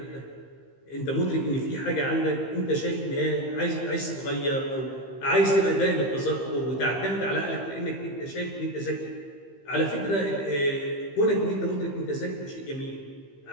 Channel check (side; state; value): right; late; 15 ms